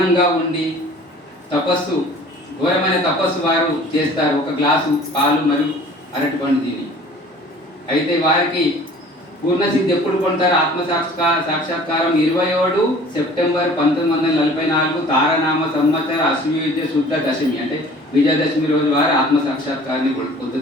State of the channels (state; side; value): normal; both; correlation 0.48